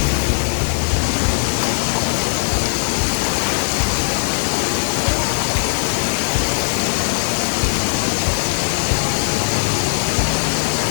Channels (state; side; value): silent; right; digital silence